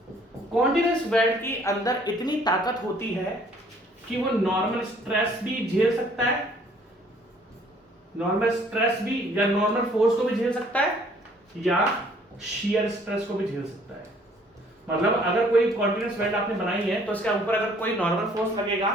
कॉन्टिन्यूअस वेल्ड की अंदर इतनी ताकत होती है कि वो नॉर्मल स्ट्रेस भी झेल सकता है, नॉर्मल स्ट्रेस भी या नॉर्मल फोर्स को भी झेल सकता है, या शियर स्ट्रेस को भी झेल सकता है। मतलब अगर कोई कॉन्टिन्यूअस वेल्ड आपने बनाई है तो इसके ऊपर अगर कोई नॉर्मल फोर्स लगेगा,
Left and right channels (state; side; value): normal; both; correlation 0.59